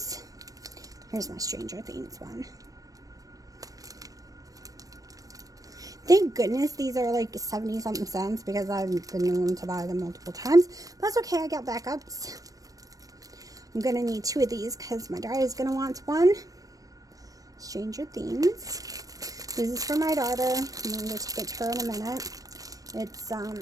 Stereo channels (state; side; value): late; left; 0.17 ms